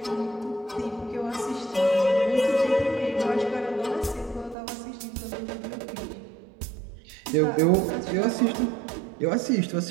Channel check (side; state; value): left; drops out; at 4.5 s